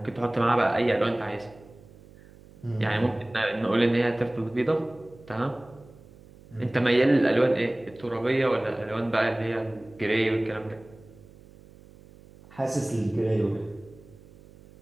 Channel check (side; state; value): right; noise; hum, 23 dB below the sound